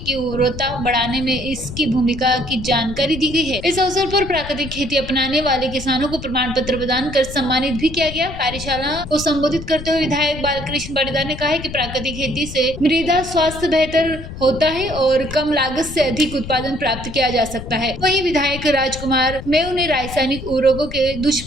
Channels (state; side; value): noise; left; rumble, 11 dB below the sound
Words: की उर्वरता बढ़ाने में इसकी भूमिका की जानकारी दी गई है। इस अवसर पर प्राकृतिक खेती अपनाने वाले किसानों को प्रमाण पत्र प्रदान कर सम्मानित भी किया गया। कार्यशाला को संबोधित करते हुए विधायक बालकृष्ण पाटीदार ने कहा है कि प्राकृतिक खेती से मृदा स्वास्थ्य बेहतर होता है और कम लागत से अधिक उत्पादन प्राप्त किया जा सकता है। वहीं विधायक राजकुमार मेव ने रासायनिक उर्वरकों के